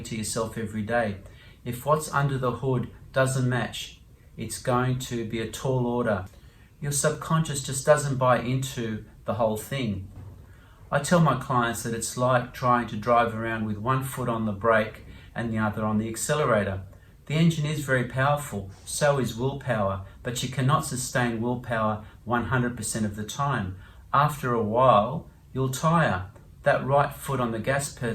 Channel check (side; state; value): both; identical; correlation 1.00